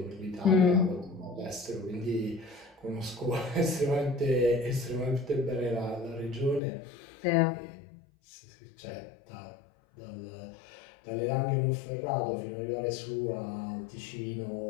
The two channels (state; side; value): drops out; right; at 6.6 s